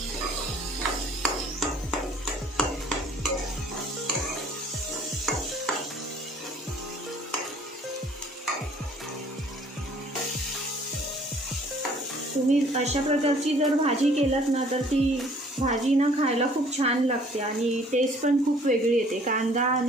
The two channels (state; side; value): normal; both; correlation 0.56